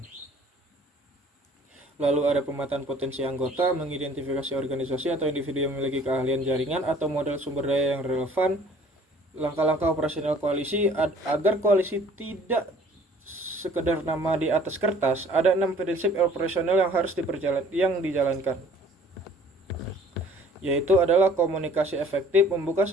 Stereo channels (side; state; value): both; normal; correlation 0.53